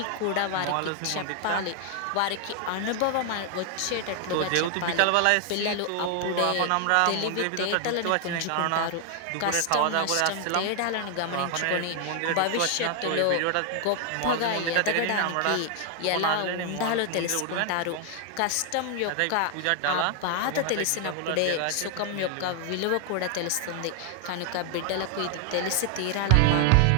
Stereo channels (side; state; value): both; different; correlation 0.00